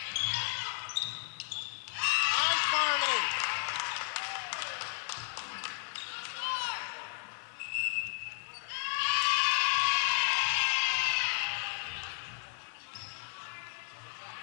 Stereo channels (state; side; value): silent; right; 55 dB below the other